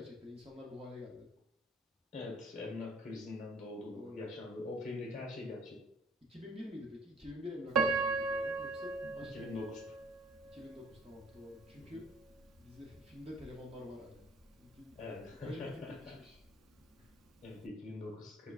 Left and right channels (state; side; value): normal; both; correlation 0.56